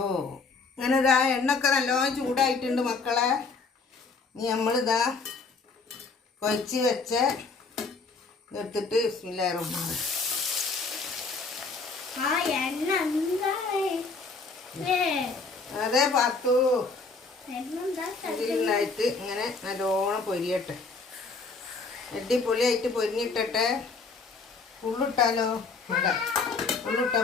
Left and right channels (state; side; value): quieter; right; 4.2 dB